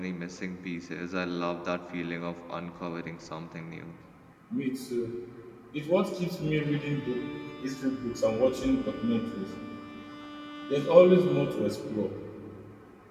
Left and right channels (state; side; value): identical; both; correlation 1.00